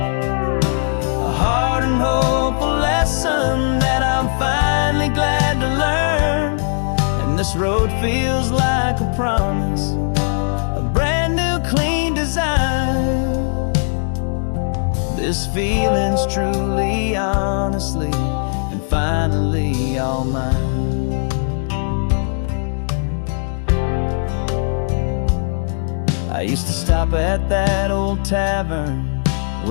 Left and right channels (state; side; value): silent; right; digital silence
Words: hard and hopeful lesson that I'm finally glad to learn. And this road feels like a promise, a brand new clean design. This feeling's truly, honestly, and finally all mine. I used to stop at that old tavern